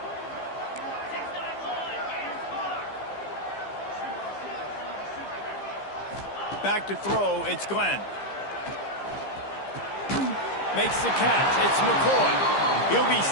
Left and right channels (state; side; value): late; right; 15 ms